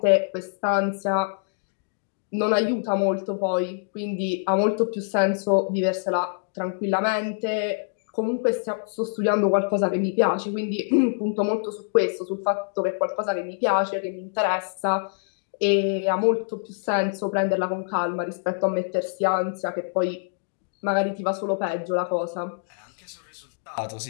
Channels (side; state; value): right; silent; digital silence